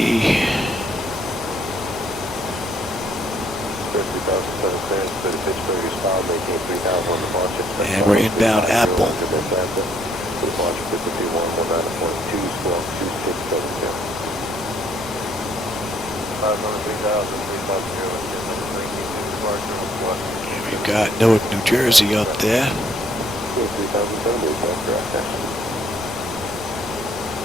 And we're inbound Apple. We've got Newark, New Jersey up there.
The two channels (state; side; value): normal; both; correlation 0.67